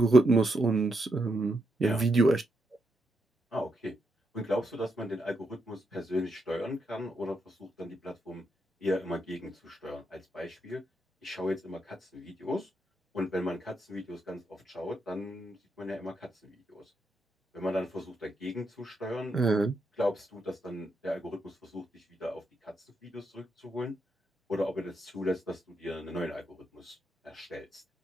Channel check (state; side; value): normal; both; correlation 0.81